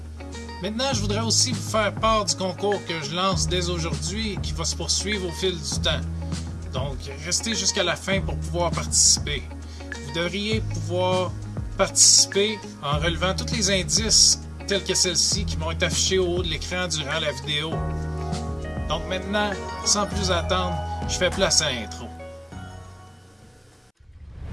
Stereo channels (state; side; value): identical; both; correlation 1.00